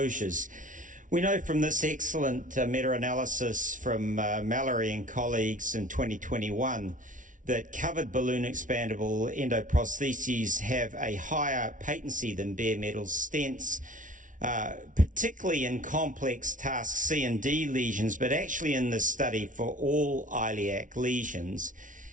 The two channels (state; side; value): late; left; 0.38 ms